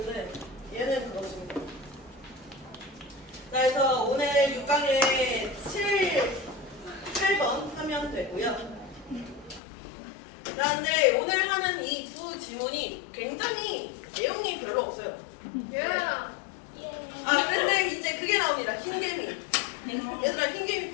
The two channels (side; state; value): right; drops out; at 9.6 s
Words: 얘는 그렇습니다. 자, 그래서 오늘 6강에 8번 하면 되고요. 자, 근데 오늘 하는 이 두 지문이 굉장히 내용이 별로 없어요. 예. 아, 근데 이제 그게 나옵니다. 흰개미. 얘들아, 흰개미